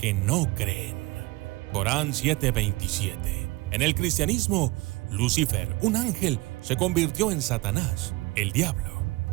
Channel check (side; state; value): left; quieter; 22.4 dB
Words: no creen». Corán 7:27. En el cristianismo, Lucifer, un ángel, se convirtió en Satanás, el diablo.